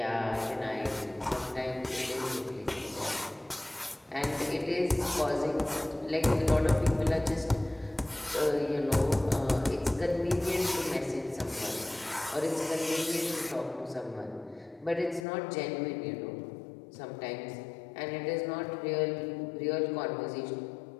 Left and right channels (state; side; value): drops out; right; at 15.2 s